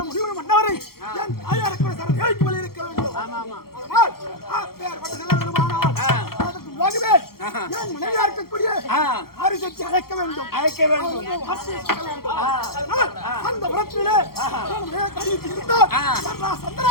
முடிவு மன்னவரை தாயாருக்கு சரஜாவிக்கு மேல் இருக்க வேண்டும். மனைவியா இருக்கக்கூடிய அரிசத்தை அழைக்க வேண்டும். அந்த உரத்திலே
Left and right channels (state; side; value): late; right; 0.94 ms